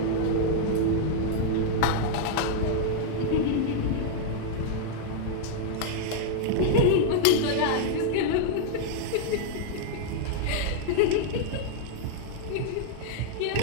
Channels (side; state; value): both; different; correlation -0.01